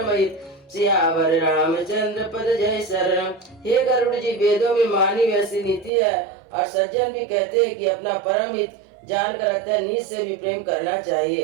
हित। सियावर रामचंद्र पद जय शरणम। हे गरुड़ जी, वेदों में मानी वैसी नीति है और सज्जन भी कहते हैं कि अपना परम हित जान कर अत्यंत नीच से भी प्रेम करना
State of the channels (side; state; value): left; drops out; at 5.9 s